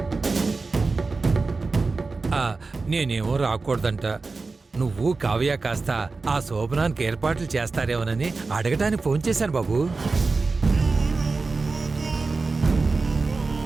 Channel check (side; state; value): left; quieter; 3.9 dB